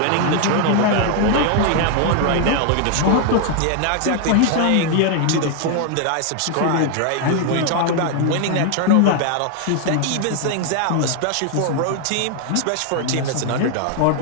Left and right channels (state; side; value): different; both; correlation 0.00